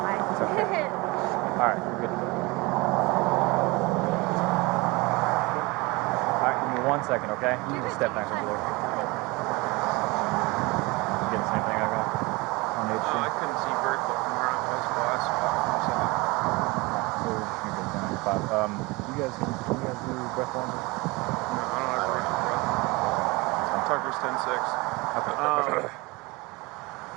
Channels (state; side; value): quieter; left; 24.4 dB